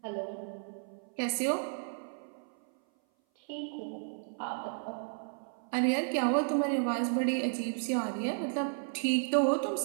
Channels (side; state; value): left; silent; 56 dB below the other